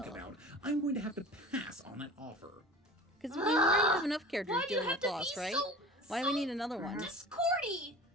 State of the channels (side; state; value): both; normal; correlation 0.39